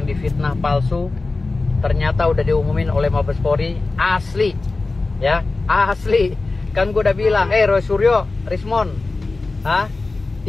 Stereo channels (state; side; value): quieter; right; 3.5 dB